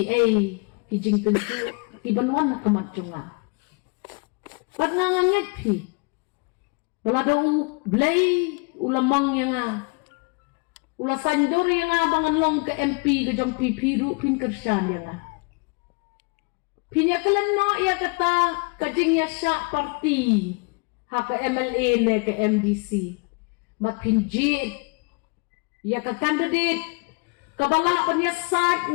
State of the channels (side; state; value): right; quieter; 31.9 dB